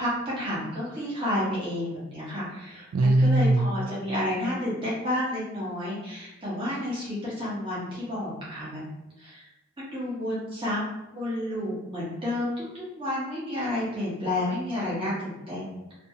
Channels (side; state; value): both; normal; correlation 0.60